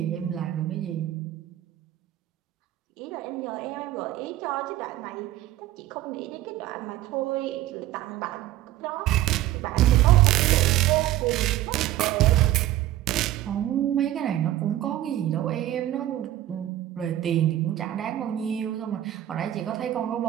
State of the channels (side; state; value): left; quieter; 13.8 dB